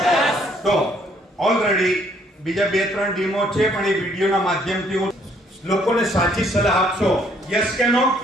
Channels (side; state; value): both; normal; correlation 0.65